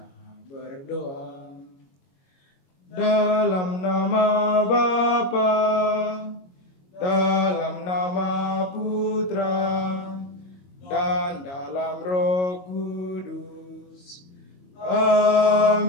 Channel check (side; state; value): right; late; 22 ms